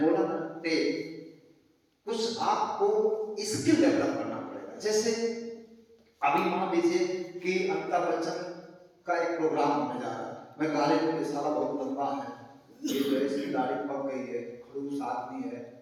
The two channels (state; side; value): identical; both; correlation 1.00